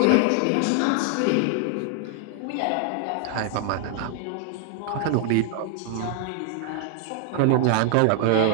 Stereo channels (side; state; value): both; different; correlation 0.00